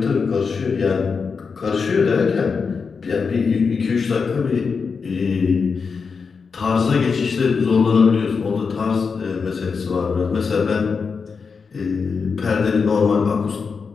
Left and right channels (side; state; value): right; quieter; 5.3 dB